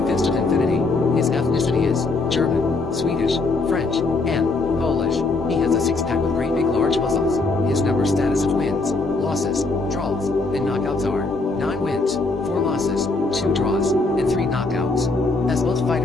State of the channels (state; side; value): quieter; right; 3.5 dB